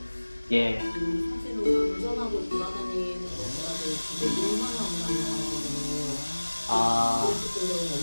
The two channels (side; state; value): both; inverted; correlation -1.00